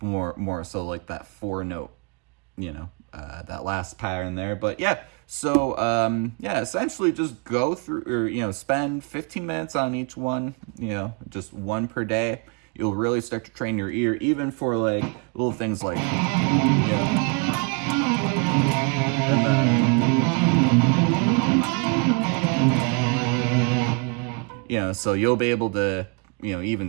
more so like that 4-note, that last pattern there. But yeah, so essentially just go through, or spend 15 minutes on each one, just one per day. You'll really start to train your ear, even for like little things like, and then, so you'll be able to,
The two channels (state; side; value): quieter; left; 32.2 dB